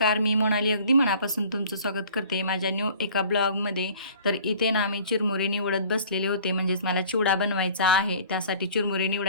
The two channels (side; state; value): both; inverted; correlation -0.49